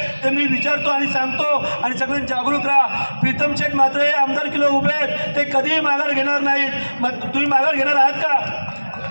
तर मी विचारतो आणि सांगतो आणि सगळ्यांनी जागरूक राहा. प्रीतम शेठ मात्र हे आमदार किलो उभे आहेत ते कधीही माघार घेणार नाहीत. मग तुम्ही माघार घेणार आहात का.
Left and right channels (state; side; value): inverted; both; correlation -1.00